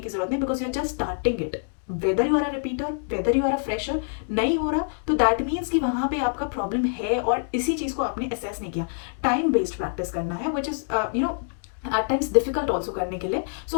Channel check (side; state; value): right; silent; digital silence